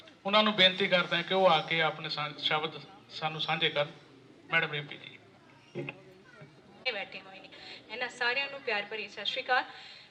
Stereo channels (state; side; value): identical; both; correlation 1.00